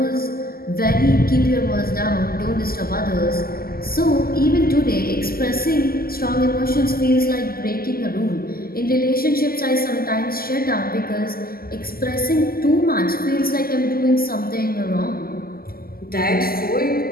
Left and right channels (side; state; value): right; late; 0.43 ms